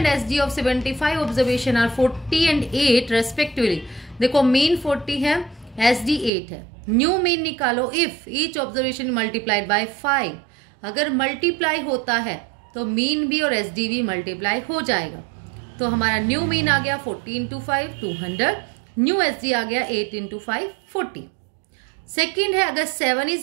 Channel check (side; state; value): left; drops out; at 6.3 s